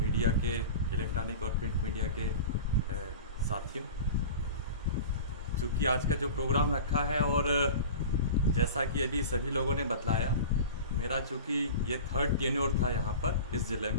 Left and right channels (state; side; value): inverted; both; correlation -0.33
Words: के इलेक्ट्रॉनिक और प्रिंट मीडिया के साथियों, चूँकि आज का जो प्रोग्राम रखा है और जैसा कि अभी सभी लोगों ने बतलाया, मेरा चूँकि ये 3rd टेन्योर था यहाँ पर इस ज़िले